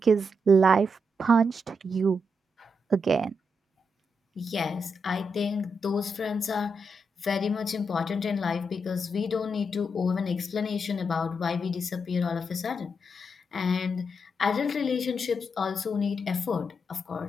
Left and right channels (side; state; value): both; normal; correlation 0.82